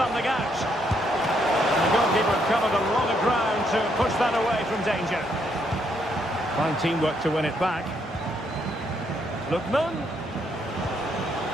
out. The goalkeeper covered a lot of ground to push that away from danger. Fine teamwork to win it back. Lookman.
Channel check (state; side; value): normal; both; correlation 0.74